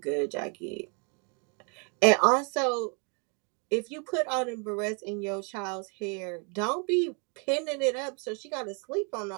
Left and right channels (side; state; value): left; quieter; 36.0 dB